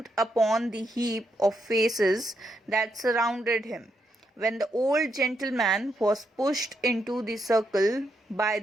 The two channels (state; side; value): normal; both; correlation 0.80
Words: upon the heap of faces that surrounded him, when the old gentleman was pushed into the circle by